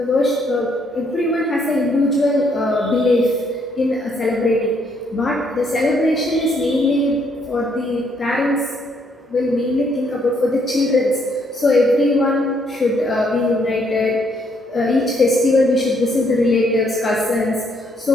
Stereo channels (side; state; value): both; normal; correlation 0.70